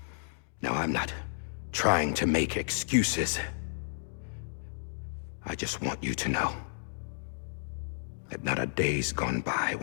Now, I'm not trying to make excuses. I just want you to know that not a day's gone by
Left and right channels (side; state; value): right; silent; digital silence